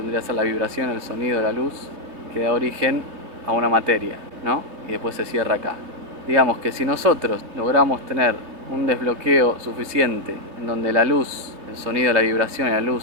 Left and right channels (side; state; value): left; late; 3.1 ms